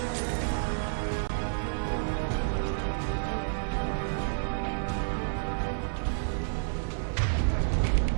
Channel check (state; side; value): silent; left; 58 dB below the other